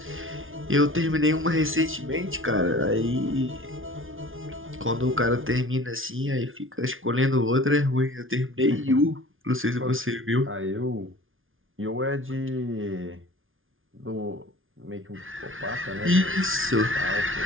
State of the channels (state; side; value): late; left; 0.58 ms